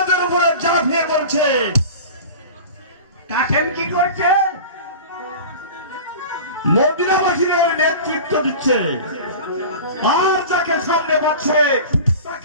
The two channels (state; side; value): inverted; both; correlation -0.35